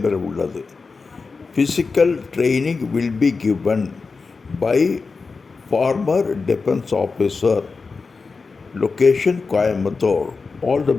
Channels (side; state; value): right; quieter; 4.5 dB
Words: உள்ளது. Physical training will be given by former defense officer. Location Coimbatore. All the